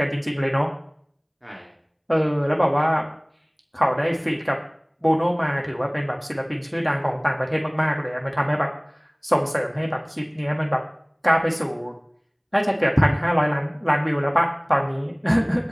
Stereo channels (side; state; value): both; identical; correlation 1.00